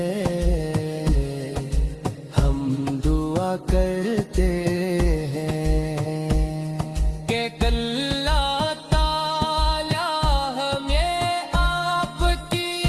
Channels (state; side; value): identical; both; correlation 1.00